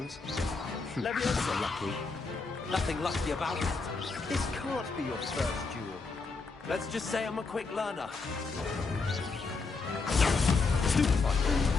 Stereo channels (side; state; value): right; quieter; 4.2 dB